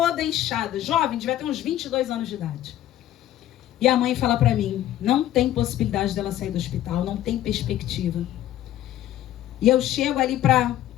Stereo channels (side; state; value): right; quieter; 12.9 dB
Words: inchada, jovem, devia ter uns 22 anos de idade. E a mãe fala para mim, não tem possibilidade dela sair do hospital, não tem perspectiva. E eu chego ali